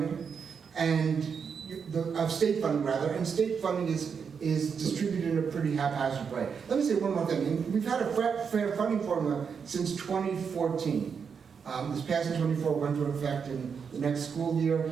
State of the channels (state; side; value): quieter; left; 6.4 dB